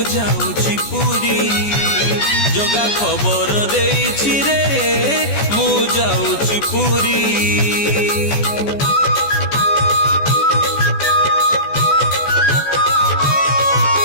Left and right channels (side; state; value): right; late; 14 ms